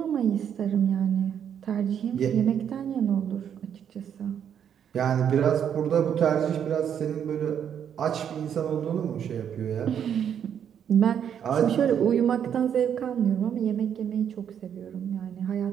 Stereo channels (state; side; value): quieter; left; 8.7 dB